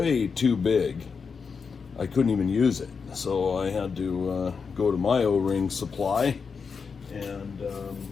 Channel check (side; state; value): right; quieter; 5.5 dB